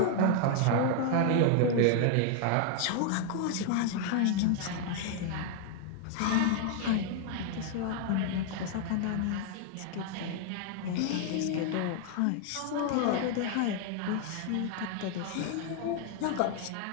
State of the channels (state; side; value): different; both; correlation 0.00